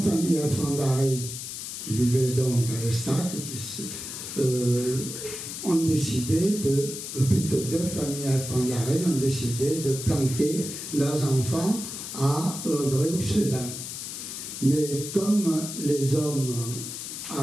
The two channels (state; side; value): noise; left; hiss, 8 dB below the sound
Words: Alfandari qui vivaient donc à l'Estac ont décidé plutôt 2 familles Alfandari ont décidé de planquer leurs enfants à Gréoux-les-Bains. Mais comme les hommes